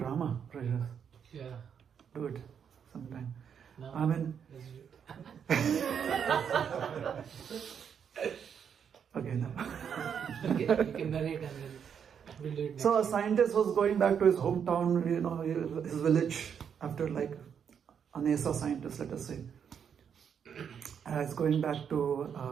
Rajas. Yeah. Do it sometime. No. I mean... Okay, no. You can narrate and then we'll do it next. So a scientist was going back to his hometown, his village, after like a NASA scientist, let us say. He's going back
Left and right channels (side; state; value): left; quieter; 7.6 dB